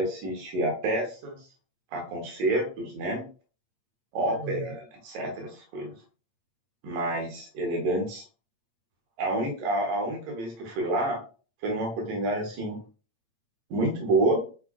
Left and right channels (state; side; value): late; left; 8.7 ms